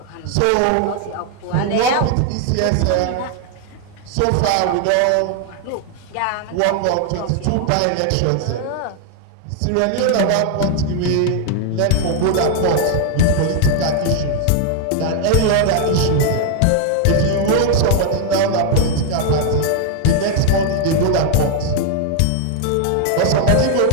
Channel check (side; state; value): both; different; correlation 0.00